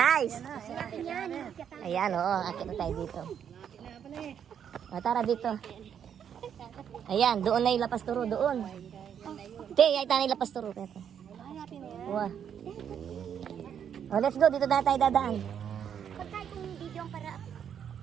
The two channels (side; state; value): left; quieter; 8.5 dB